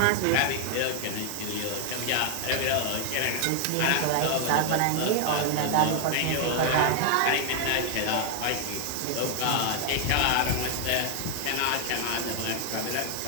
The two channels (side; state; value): both; different; correlation 0.00